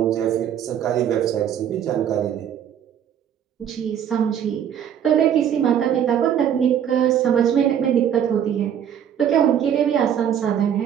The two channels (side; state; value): left; quieter; 9.3 dB